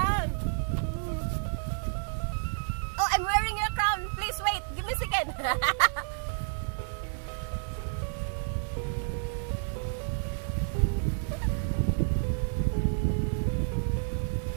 Oh, I'm wearing your crown. Please wait. Give me a second.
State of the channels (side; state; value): left; silent; digital silence